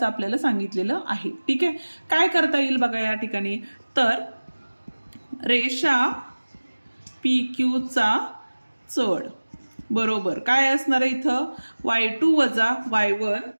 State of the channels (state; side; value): inverted; both; correlation -1.00